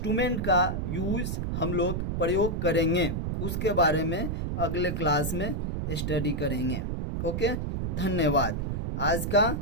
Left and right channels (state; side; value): noise; right; rumble, 2 dB below the sound